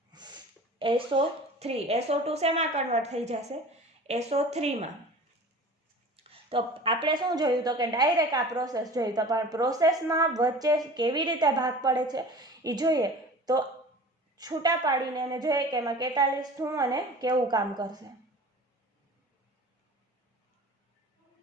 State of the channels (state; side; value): normal; both; correlation 0.40